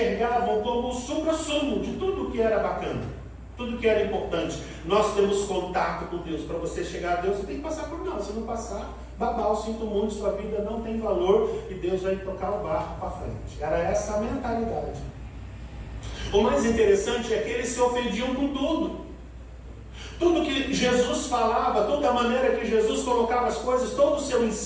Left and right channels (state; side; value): identical; both; correlation 1.00